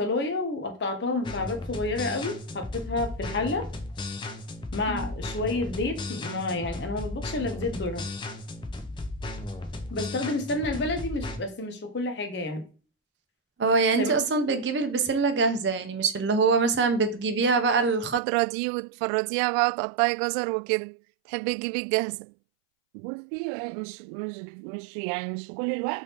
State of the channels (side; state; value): left; drops out; at 18.2 s